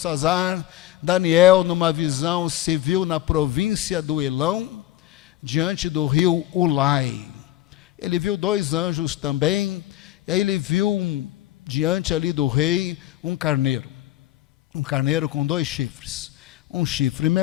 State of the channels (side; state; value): right; quieter; 14.5 dB